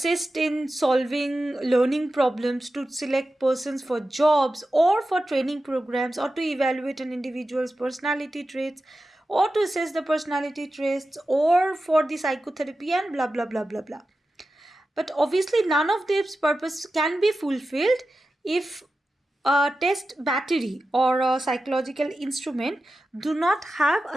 in solving learning problems, to select persons for jobs or for training programs, or to evaluate an individual's personality traits, or to assess the personality traits, or for the psychotherapy, and blah blah blah blah blah. But obviously, none of these purposes can be fulfilled if a test battery or a psychological instrument do not have a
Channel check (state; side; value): normal; both; correlation 0.92